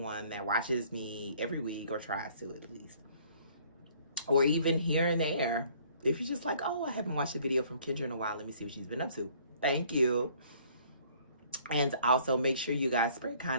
that watches me every week, or tries to at least. Or even here and there. If you're just like, oh, I haven't watched a video from Kendra in a while. Let me see what she's been up to. Thank you. And also make sure you guys spread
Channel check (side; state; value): both; inverted; correlation -0.58